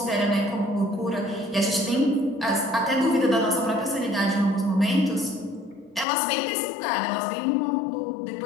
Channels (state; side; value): drops out; right; at 6.1 s